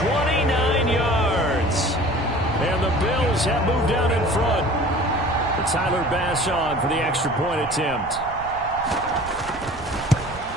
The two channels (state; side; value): noise; right; rumble, 16 dB below the sound